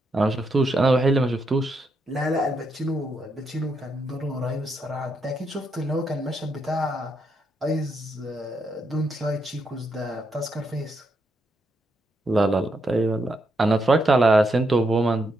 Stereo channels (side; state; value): both; normal; correlation 0.80